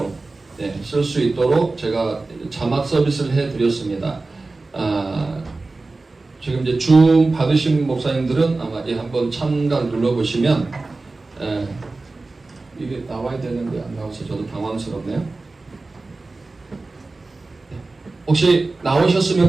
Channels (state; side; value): quieter; left; 3.4 dB